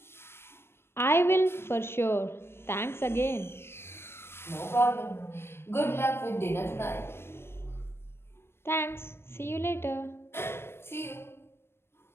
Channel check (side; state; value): right; late; 0.12 ms